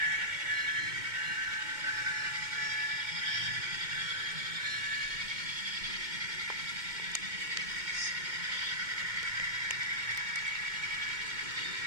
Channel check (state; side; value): late; left; 2.2 ms